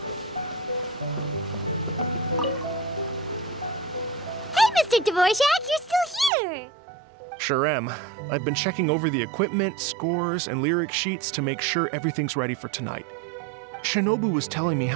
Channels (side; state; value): left; drops out; at 6.3 s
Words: Mr. Dvorak, you're still here! Sure am. I've been checking over the equipment, scores, and lyric sheets to make sure everything's ready for tonight. Shinobu was telling me